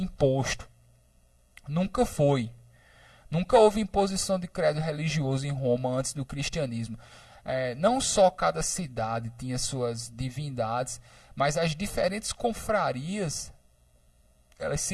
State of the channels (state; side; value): identical; both; correlation 1.00